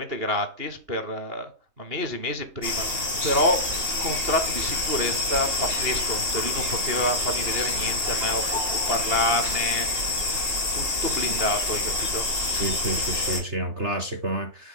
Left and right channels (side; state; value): left; late; 2.8 ms